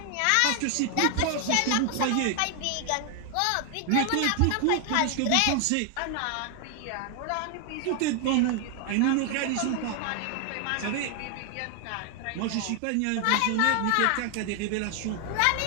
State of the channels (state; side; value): different; both; correlation 0.00